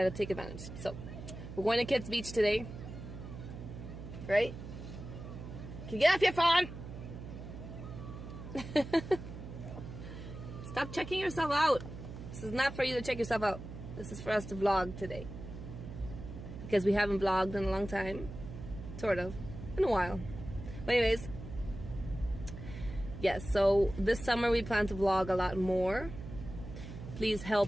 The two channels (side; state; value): right; noise; hum, 11 dB below the sound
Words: take advantage. So we're going to Kits Beach today, right? Can you get off your phone? Stop checking yourself out. This is not for you to check yourself out. This is for us to vlog today. Because we haven't vlogged in a long time. Sort of. In a while. But anyways. Yes, so this summer we plan to vlog a lot more. Please